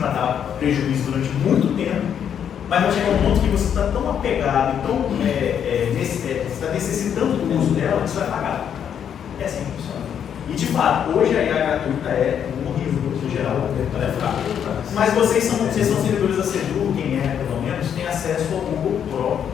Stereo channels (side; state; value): right; quieter; 8.6 dB